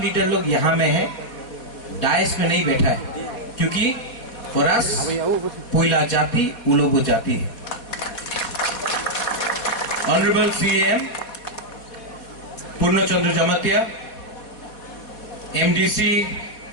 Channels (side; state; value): right; late; 4.1 ms